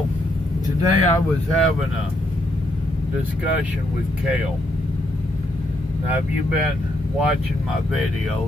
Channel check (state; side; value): normal; both; correlation 0.77